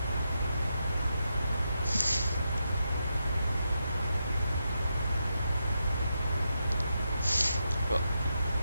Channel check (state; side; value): inverted; both; correlation -0.85